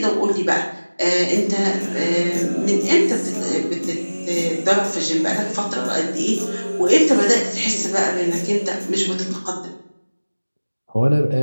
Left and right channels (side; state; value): both; inverted; correlation -1.00